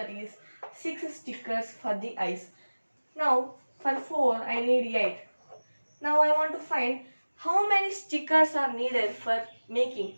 is 6 stickers for the eyes. Now for 4, I need 8. Now I want to find how many stickers are needed for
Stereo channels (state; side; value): inverted; both; correlation -1.00